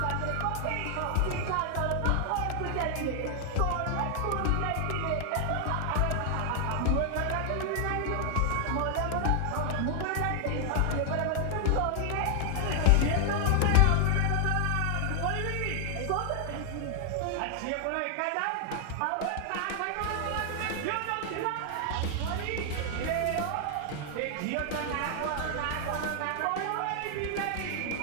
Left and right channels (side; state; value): both; different; correlation 0.00